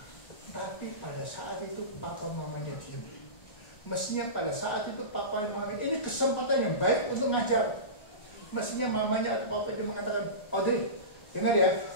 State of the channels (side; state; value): right; late; 1.4 ms